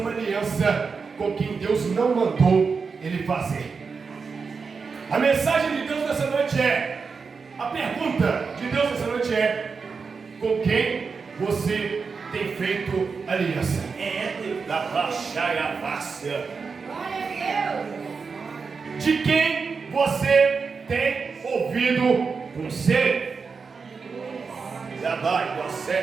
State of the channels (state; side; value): quieter; left; 5.1 dB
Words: aliança com quem Deus não mandou ele fazer. A mensagem de Deus nessa noite é, a pergunta de Deus nessa noite é: com quem você tem feito aliança? Da baixaia fácil. De quem você tem ouvido conselho? Já vai,